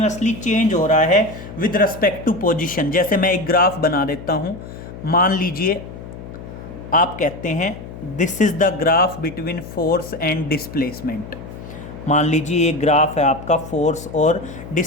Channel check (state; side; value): noise; left; hum, 13 dB below the sound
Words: चेंज हो रहा है विद रिस्पेक्ट टू पोजीशन। जैसे मैं एक ग्राफ बना देता हूं, मान लीजिए आप कहते हैं this is the graph between force and displacement. मान लीजिए ये ग्राफ है आपका फोर्स और